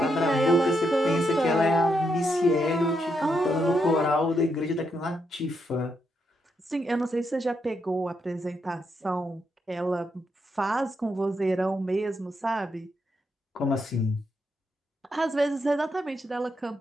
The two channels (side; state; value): both; normal; correlation 0.80